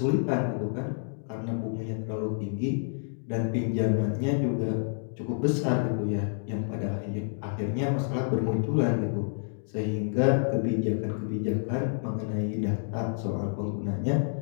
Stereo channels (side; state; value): right; silent; digital silence